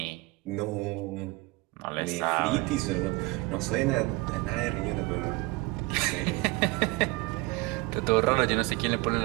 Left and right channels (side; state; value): left; quieter; 22.2 dB